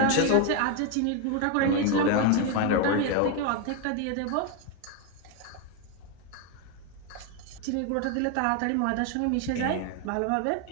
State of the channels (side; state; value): both; different; correlation 0.01